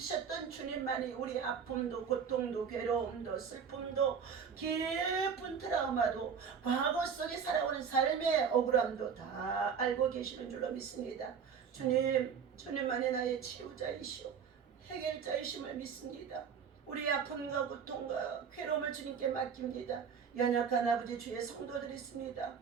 주님만이 우리 아픔도 고통도 괴로움도 슬픔도 깊은 트라우마도 과거 속에 살아오는 삶의 억울함도 다 알고 계시는 줄로 믿습니다. 주님만이 나의 치유자이시오 해결자이심을 믿습니다. 우리의 아픔과 고통과 괴로움을 주님께 맡깁니다. 연약한 아버지 주의 성도들이 있습니다.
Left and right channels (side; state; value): left; quieter; 6.8 dB